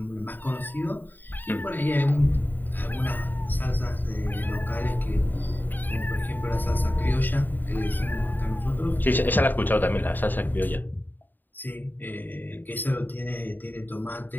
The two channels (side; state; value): right; late; 0.090 ms